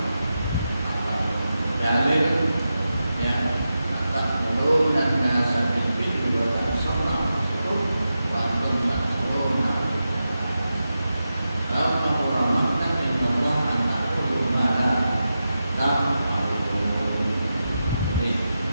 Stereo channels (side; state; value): both; inverted; correlation -0.90